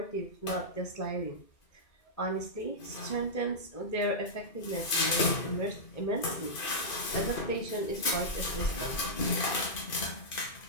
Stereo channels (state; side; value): late; right; 2.5 ms